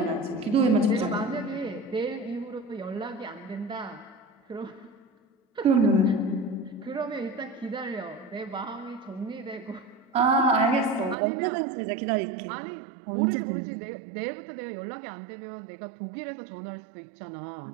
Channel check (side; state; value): left; drops out; at 11.2 s